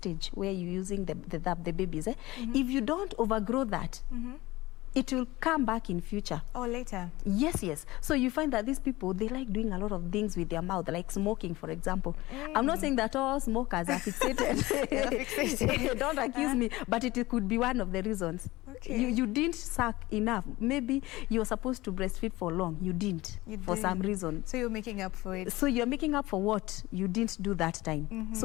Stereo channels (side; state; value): right; quieter; 19.4 dB